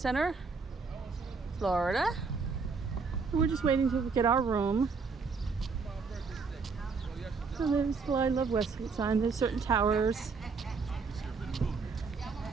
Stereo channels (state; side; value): quieter; left; 4.9 dB